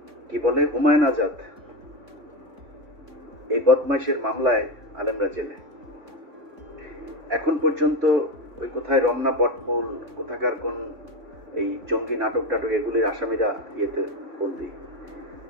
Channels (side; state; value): left; late; 3.6 ms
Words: কি বলে হুমায়ুন আজাদ, এই বদমাইশের মামলায় আলেমরা জেলে। এখন পর্যন্ত কোথায় রমনা, পটমূল, কোথাকার কোন এই জঙ্গি নাটক টাটক এগুলির আসামিরা ইয়েতে বন্দী।